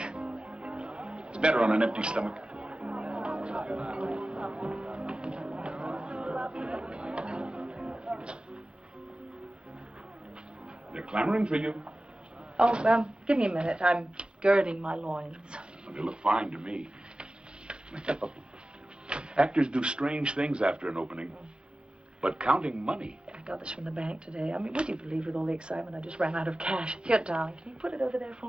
It's better on an empty stomach. They're clamoring for you. Oh, give me a minute. I'm girding my loins. They look fine to me. Actors do strange things after an opening. But counting money. I got this from the bank today. I mean, would you believe with all the excitement I just ran out of cash? Here, darling, can you put it over there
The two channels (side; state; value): left; late; 0.053 ms